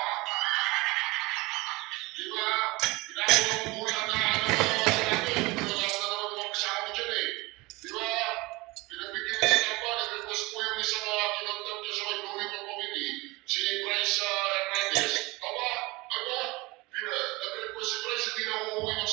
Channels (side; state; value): left; quieter; 23.2 dB